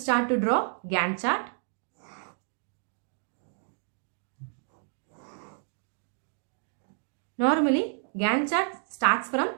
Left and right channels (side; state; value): left; silent; 58 dB below the other